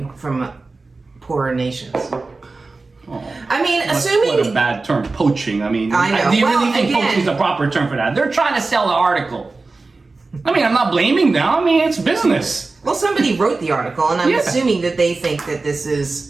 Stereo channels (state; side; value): quieter; left; 3.7 dB